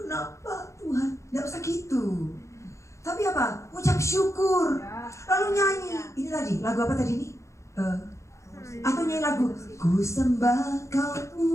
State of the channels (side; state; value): right; late; 0.14 ms